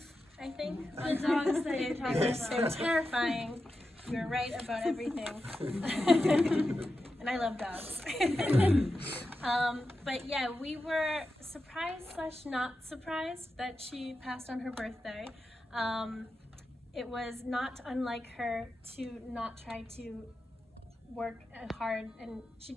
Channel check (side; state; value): both; normal; correlation 0.90